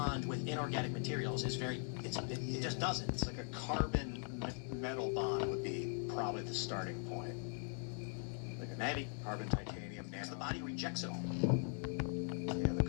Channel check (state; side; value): silent; right; 50 dB below the other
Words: with inorganic materials it just doesn't. It's like a carbon metal bond would be probably the starting point. Like a maybe. Carbon, titanium, nano. The body rejects it all. Yeah, the